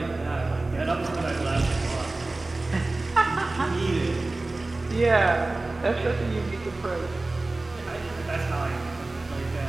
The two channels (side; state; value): left; quieter; 3.1 dB